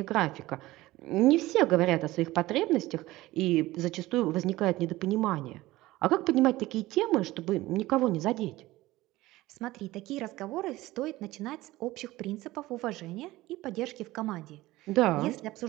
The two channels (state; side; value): quieter; left; 18.0 dB